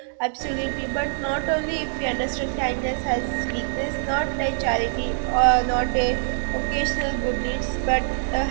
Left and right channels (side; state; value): left; silent; digital silence